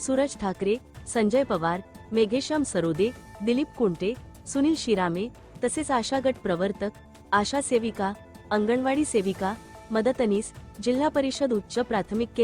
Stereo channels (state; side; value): identical; both; correlation 1.00